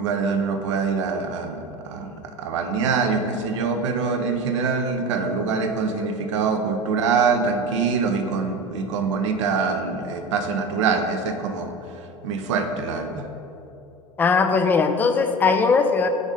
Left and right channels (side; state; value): both; normal; correlation 0.33